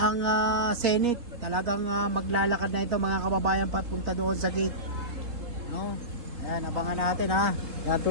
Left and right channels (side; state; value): left; late; 3.7 ms